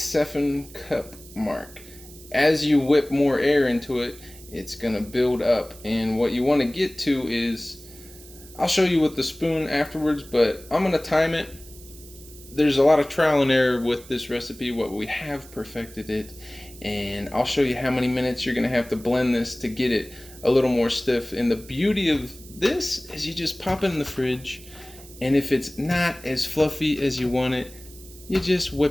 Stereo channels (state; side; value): noise; right; hiss, 20 dB below the sound